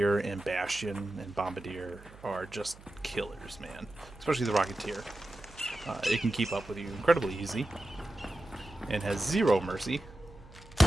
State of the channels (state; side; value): noise; right; hum, 20 dB below the sound